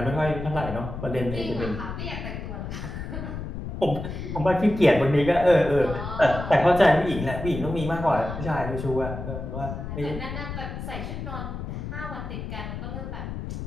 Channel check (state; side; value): noise; left; rumble, 7 dB below the sound